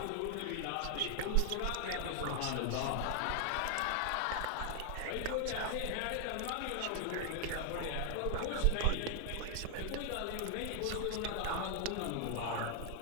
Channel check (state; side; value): different; both; correlation 0.00